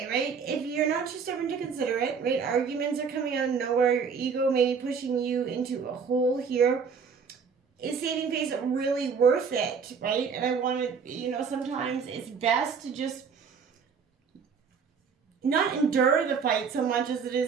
right? If you're not too stubborn to consider it, right? Arguments are coming out of nowhere. Your ego may be pushing you into a hole here. Is saving face really worth it, right? And I want to, you know, sometimes it's best to just not endure the fight so much as it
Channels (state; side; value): quieter; left; 6.0 dB